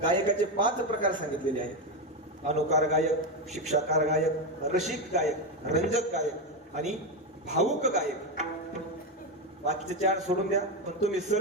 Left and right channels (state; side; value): normal; both; correlation 0.11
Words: गायकाचे 5 प्रकार सांगितलेले आहेत. अनुकार गायक, शिक्षाकार गायक, रसिक गायक, रंजक गायक आणि भावुक गायक. बाकीचे 4 सोडून द्या पण तुम्ही